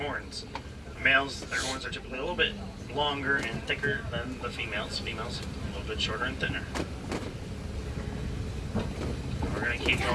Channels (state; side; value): identical; both; correlation 1.00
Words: Males, their horns are typically a little bit longer and thicker than the females. Females, a little bit shorter and thinner. We're going to keep